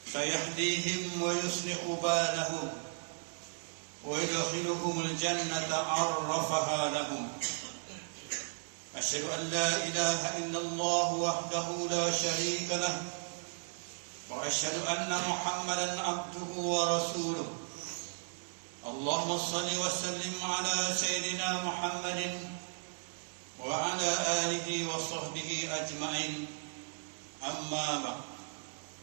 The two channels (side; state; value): left; silent; 54 dB below the other